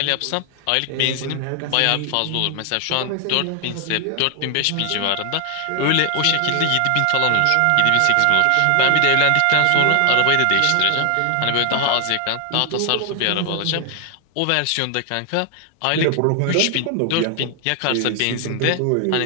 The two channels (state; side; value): different; both; correlation 0.00